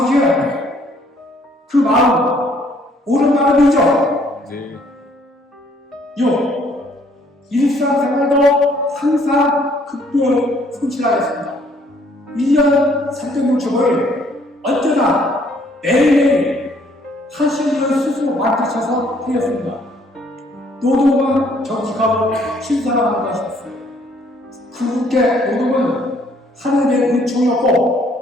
그 마음 옳은 마음이죠. 네. 6. 일상생활도 항상 극도로 성실하였습니다. 1년 365일 언제나 매일매일 하시는 스스로 맡으셔서 하였습니다. 노동은 정직하고 신사랑한 것이었어요. 그분께 노동은 하느님의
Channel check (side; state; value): both; normal; correlation 0.63